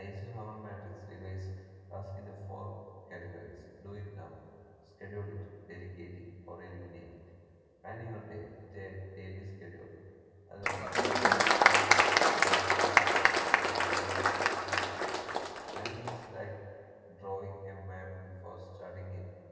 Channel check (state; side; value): identical; both; correlation 1.00